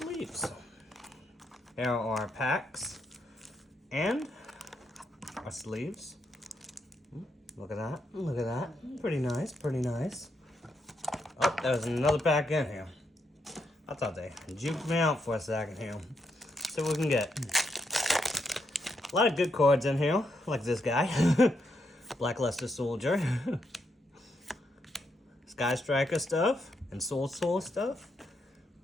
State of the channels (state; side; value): normal; both; correlation 0.79